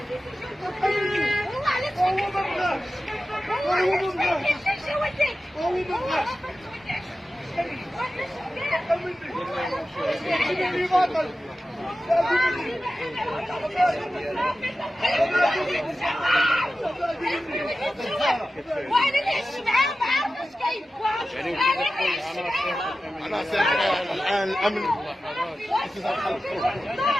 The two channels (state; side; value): normal; both; correlation 0.94